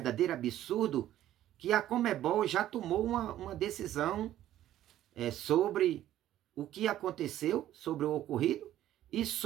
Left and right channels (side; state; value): left; quieter; 12.8 dB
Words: absurdo que a Conmebol já tomou uma decisão sobre o que aconteceu, sobre o ocorrido e